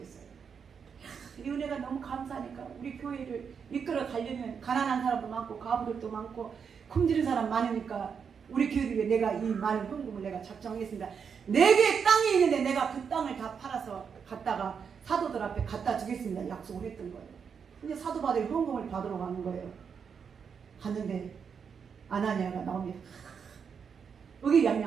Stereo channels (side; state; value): left; quieter; 6.6 dB